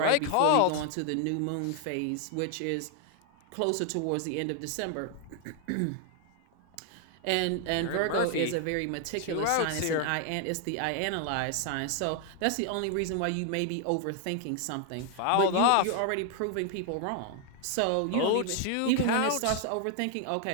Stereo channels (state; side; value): different; both; correlation 0.00